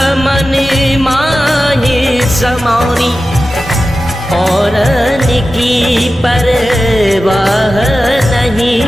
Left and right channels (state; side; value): normal; both; correlation 0.93